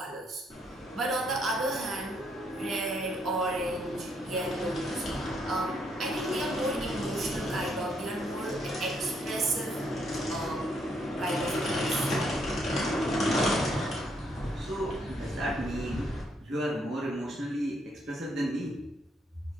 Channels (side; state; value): both; normal; correlation 0.72